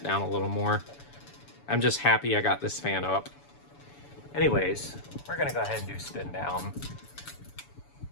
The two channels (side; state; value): right; late; 7.0 ms